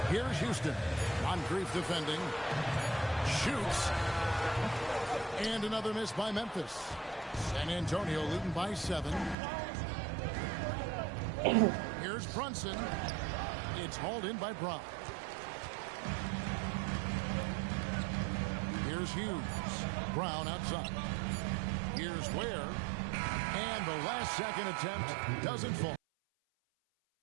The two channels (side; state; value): left; drops out; at 9.3 s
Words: Here's Houston. Moncrief defending. Shoots. And another miss by Memphis. San Antonio leading by 7. Here's Brunson. It's hauled in by Brown. Here's Hughes. Brown outside. Here's Ware. And the last second attempt doesn't fall.